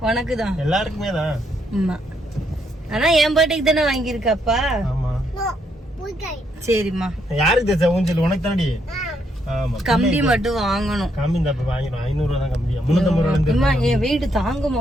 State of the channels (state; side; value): normal; both; correlation 0.75